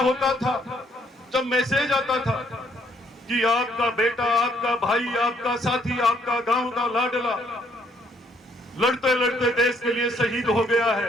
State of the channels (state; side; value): normal; both; correlation 0.67